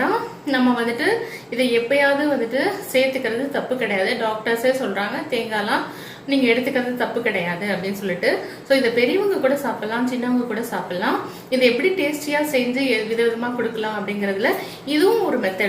தான். நம்ம வந்துட்டு இதை எப்பயாவது வந்துட்டு சேர்த்துக்கிறது தப்பு கிடையாது. டாக்டர்ஸே சொல்றாங்க தேங்காய்லாம் நீங்க எடுத்துக்கிறது தப்பு கிடையாது அப்படின்னு சொல்லிட்டு. ஸோ இதை பெரியவங்க கூட சாப்பிடலாம், சின்னவங்க கூட சாப்பிடலாம். இதை எப்படி டேஸ்டியா செஞ்சு விதவிதமா கொடுக்கலாம் அப்படிங்கறதுல இதுவும் ஒரு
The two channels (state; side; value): identical; both; correlation 1.00